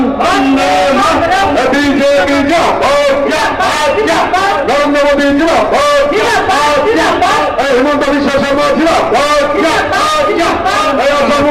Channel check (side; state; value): both; identical; correlation 1.00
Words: বিজেপি জিন্দাবাদ, নরেন্দ্র মোদী জিন্দাবাদ, হিমন্ত বিশ্ব শর্মা জিন্দাবাদ, আসাম